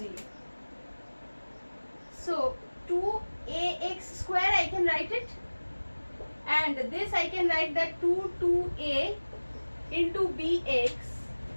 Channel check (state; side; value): inverted; both; correlation -1.00